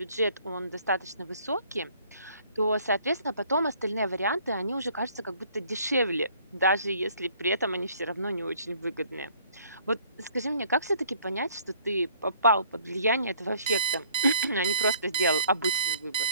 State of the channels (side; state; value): both; inverted; correlation -0.59